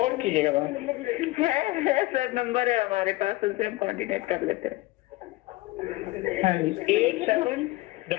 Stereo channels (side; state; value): right; quieter; 19.6 dB